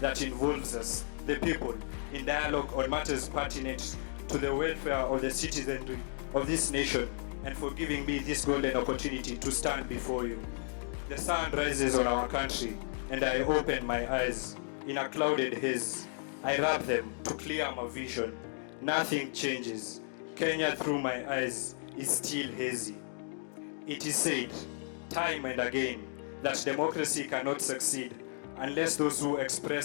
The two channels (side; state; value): right; silent; 55 dB below the other